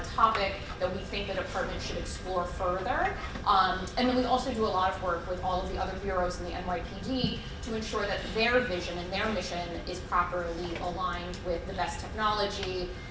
topic that we think the department should explore further. And then we also do a lot of work with all of the other bureaus in the NYPD to ensure that their vision and their mission is properly aligned with the best technology,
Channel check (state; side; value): identical; both; correlation 1.00